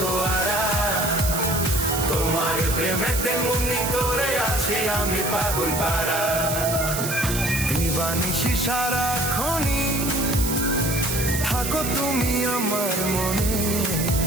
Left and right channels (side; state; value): right; noise; hiss, 4 dB below the sound